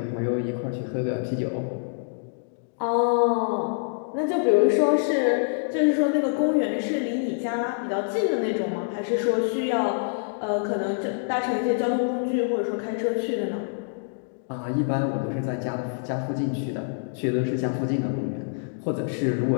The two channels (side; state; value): right; silent; digital silence